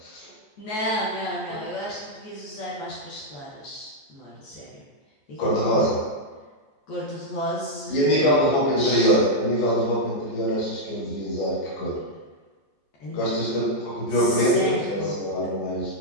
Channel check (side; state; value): right; late; 14 ms